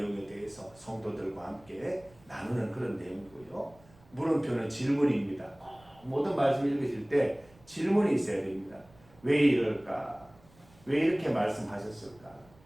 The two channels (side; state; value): right; noise; rumble, 27 dB below the sound